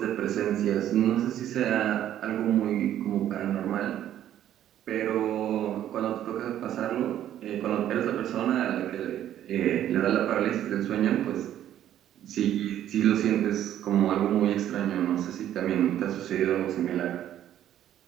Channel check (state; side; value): quieter; left; 11.5 dB